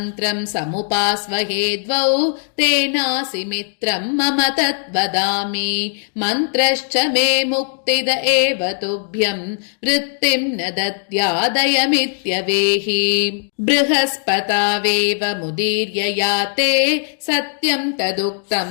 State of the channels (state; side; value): silent; right; digital silence